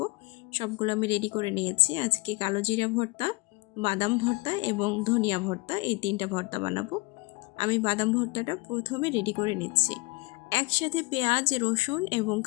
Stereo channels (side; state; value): right; quieter; 24.8 dB